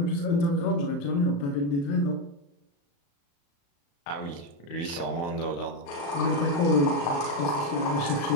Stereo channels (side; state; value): right; late; 35 ms